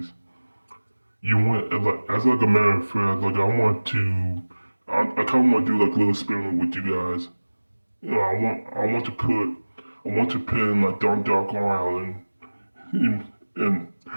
You want like as like a matter of fact, like I kind of want to do like a little experiment with you guys. I want to pin like Dondoko Island and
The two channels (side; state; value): both; inverted; correlation -1.00